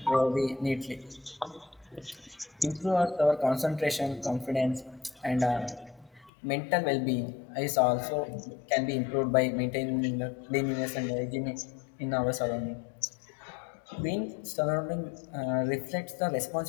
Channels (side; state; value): right; drops out; at 6.3 s